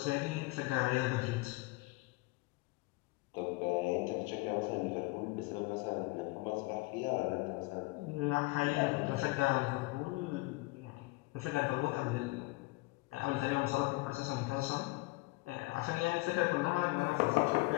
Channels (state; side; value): quieter; right; 22.8 dB